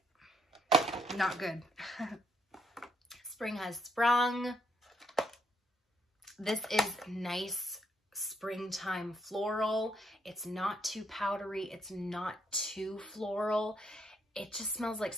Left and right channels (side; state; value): both; normal; correlation 0.73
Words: Not good. Spring has sprung. This is nice springtime floral. It's not too powdery. It's not too floral. It just smells like